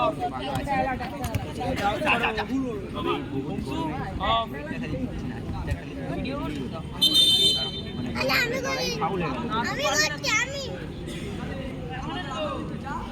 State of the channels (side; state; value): both; identical; correlation 1.00